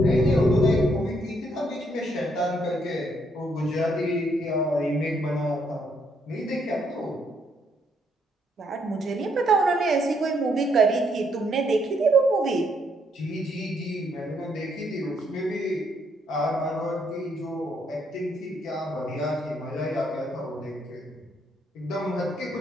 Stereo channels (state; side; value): normal; both; correlation 0.72